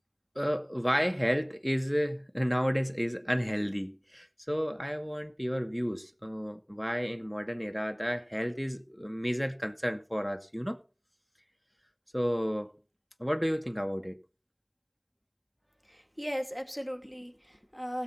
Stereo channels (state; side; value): identical; both; correlation 1.00